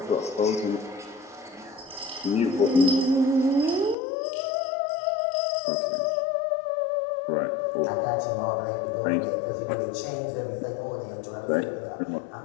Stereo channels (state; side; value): drops out; right; at 4.0 s